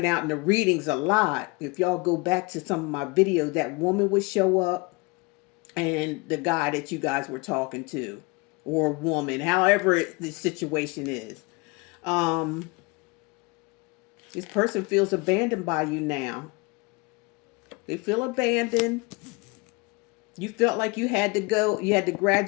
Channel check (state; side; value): quieter; right; 27.1 dB